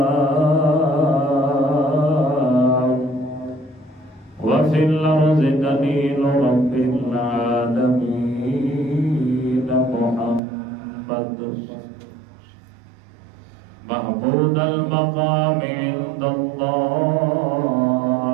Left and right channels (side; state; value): left; drops out; at 10.4 s